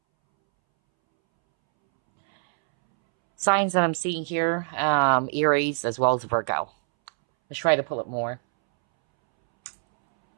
Signs that I'm seeing here, Aries as well as Virgo. Let's try to pull it more.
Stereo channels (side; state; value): left; silent; 63 dB below the other